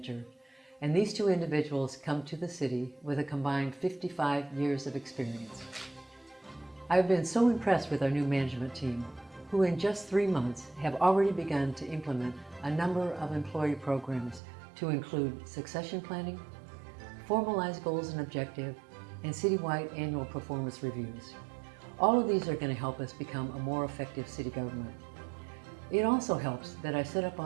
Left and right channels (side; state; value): left; drops out; at 14.4 s